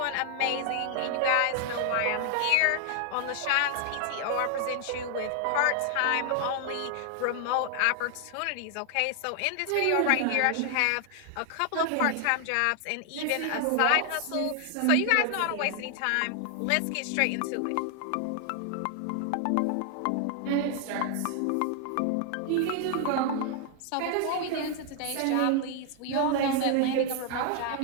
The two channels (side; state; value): both; different; correlation 0.00